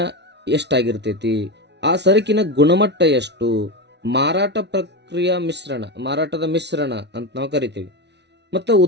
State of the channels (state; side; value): late; left; 0.50 ms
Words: ಎಷ್ಟಾಗಿರ್ತೈತಿ, ಆ ಸರಕಿನ ಗುಣಮಟ್ಟ ಎಷ್ಟು, ಮಾರಾಟ ಪ್ರಕ್ರಿಯೆ ಮಾರಾಟದ ಮಿಶ್ರಣ ಅಂತ ನಾವು ಕರಿತೀವಿ. ಮತ್ತು